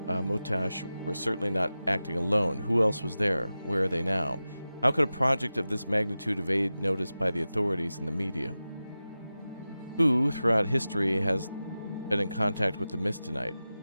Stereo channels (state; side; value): inverted; both; correlation -0.94